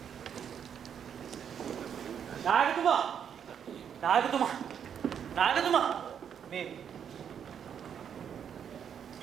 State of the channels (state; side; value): quieter; left; 8.2 dB